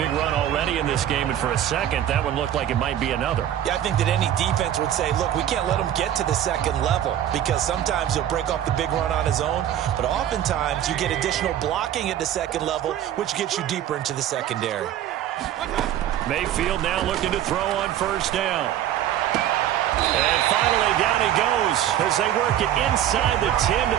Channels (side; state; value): left; quieter; 11.3 dB